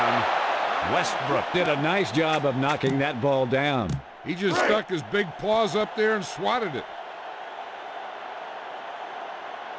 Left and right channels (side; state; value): both; identical; correlation 1.00